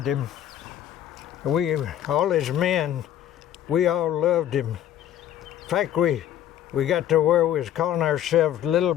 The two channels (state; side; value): quieter; right; 11.2 dB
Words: him. All his men, we all loved him. In fact, we got to where we was calling ourselves Little